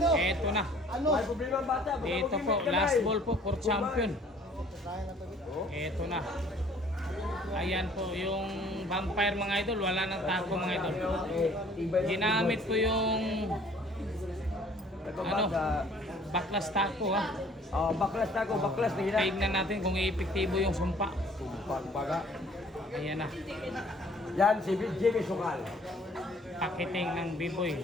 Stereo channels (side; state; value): both; normal; correlation 0.56